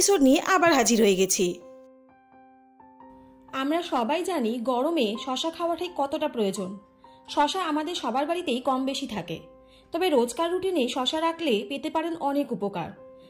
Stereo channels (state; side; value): identical; both; correlation 1.00